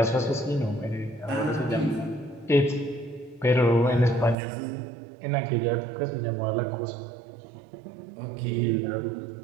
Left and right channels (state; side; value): drops out; left; at 4.4 s